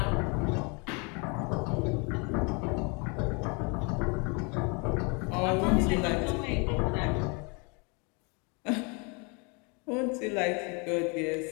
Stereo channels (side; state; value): right; quieter; 32.2 dB